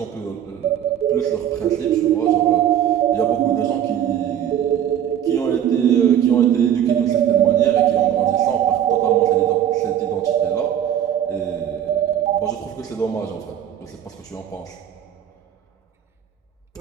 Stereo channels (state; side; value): quieter; left; 10.1 dB